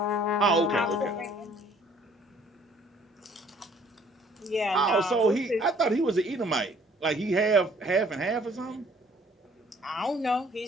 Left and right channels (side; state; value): both; normal; correlation 0.58